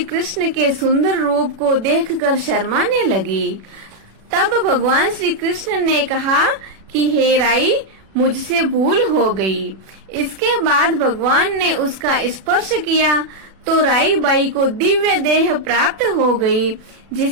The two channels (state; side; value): late; left; 36 ms